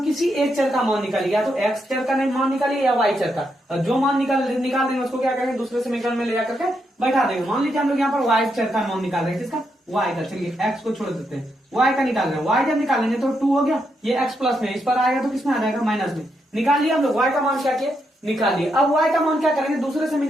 किसी एक चर का मान निकालिए, या तो x चर का मान निकालिए या y चर का। और जो मान निकाल देंगे उसको क्या करेंगे? दूसरे समीकरण में ले जाकर के बैठा देंगे। मान लीजिए हम लोग यहाँ पर y चर का मान निकाल रहे हैं, किसका? y का। चलिए x को छोड़ देते हैं, y का निकाल रहे हैं। y जब निकालेंगे तो 2 हो गया, ये x प्लस में, इस पर आएगा तो किसमें आ जाएगा? माइनस में। निकाल लिया हम लोग y का मान, क्या किया? निकाल लिए। अब y का मान क्या करेंगे? दूसरे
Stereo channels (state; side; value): normal; both; correlation 0.81